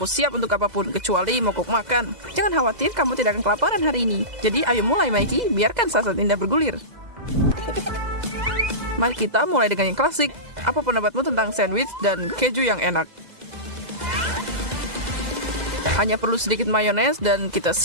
siap untuk apapun, kecuali mogok makan. Jangan khawatir, kamu tidak akan kelaparan hari ini. Jadi, ayo mulai, Mikey. Biarkan saat indah bergulir. Mari kita mulai dengan yang klasik. Apa pendapatmu tentang sandwich dan keju yang enak? Hanya perlu sedikit mayones dan kita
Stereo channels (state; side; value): late; left; 2.0 ms